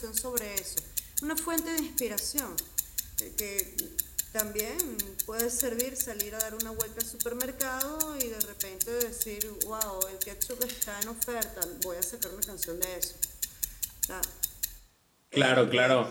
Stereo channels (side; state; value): both; identical; correlation 1.00